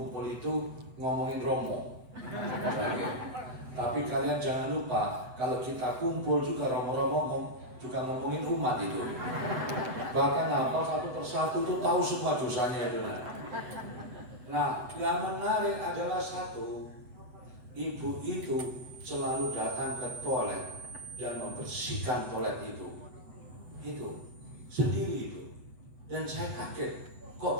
itu ngomongin Romo. Tapi kalian jangan lupa, kalau kita kumpul juga Romo-Romo juga ngomongin umat itu. Bahkan hafal satu persatu itu tahu semua dosanya itu. Nah, yang menarik adalah satu, ibu itu selalu datang ke toilet dan membersihkan toilet itu sendiri itu. Dan saya kaget, kok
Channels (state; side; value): late; left; 8.0 ms